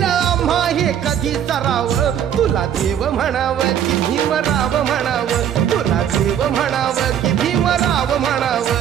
आम्हा हे कधी सराव तुला देव म्हणावं की भीमराव म्हणावं तुला देव म्हणावं की भीमराव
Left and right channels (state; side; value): quieter; left; 9.5 dB